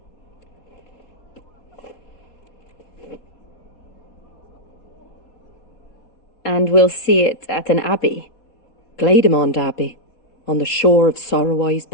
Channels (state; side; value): late; right; 3.8 ms